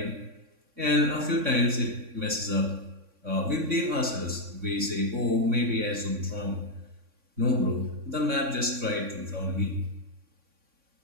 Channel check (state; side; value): late; left; 3.6 ms